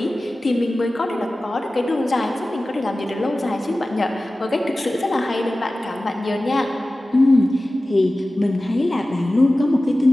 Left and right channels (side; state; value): both; normal; correlation 0.96